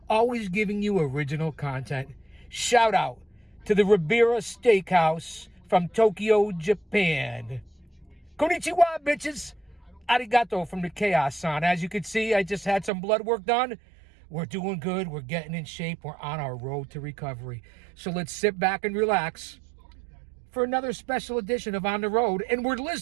always giving you original content. Shout out to the Ribera Steakhouse from Tokyo, Japan. Konnichiwa, bitches. Arigato from the Chaos-san. As you can see, I just had some blood work done. We're doing good. We're getting in shape. We're on our road to recovery. So let's sit back and relax for another special edition of On the Road. And we're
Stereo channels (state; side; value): drops out; left; at 12.9 s